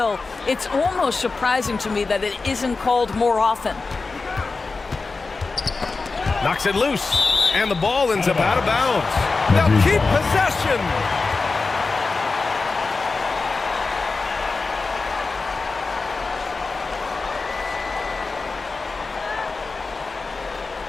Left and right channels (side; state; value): right; quieter; 4.0 dB